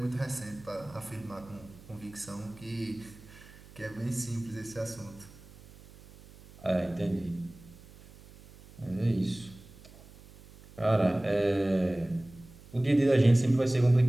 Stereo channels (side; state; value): right; noise; hum, 21 dB below the sound